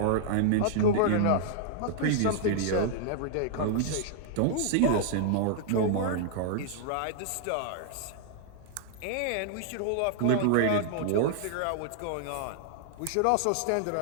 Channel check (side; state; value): both; different; correlation -0.01